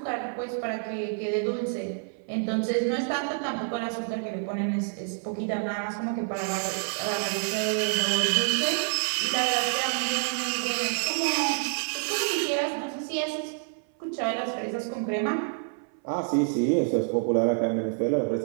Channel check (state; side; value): silent; left; 58 dB below the other